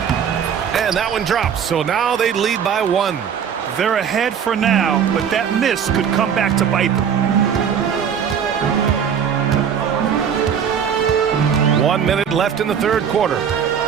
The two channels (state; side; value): quieter; left; 7.8 dB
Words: And that one drops, so now they lead by 1. They're ahead for now, but that miss could come back to bite them. 1 minute left in the third quarter.